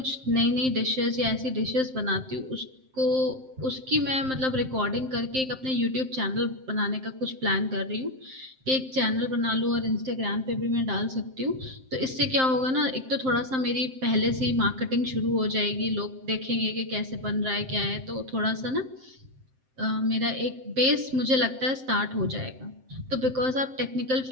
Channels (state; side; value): late; left; 7.6 ms